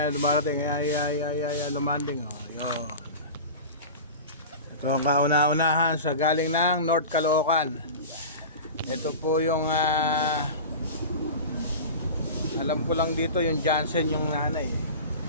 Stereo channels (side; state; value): both; inverted; correlation -0.31